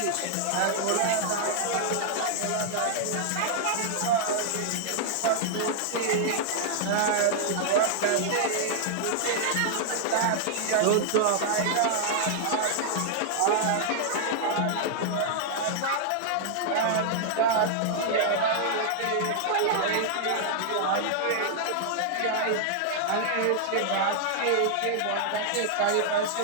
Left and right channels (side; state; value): both; different; correlation -0.01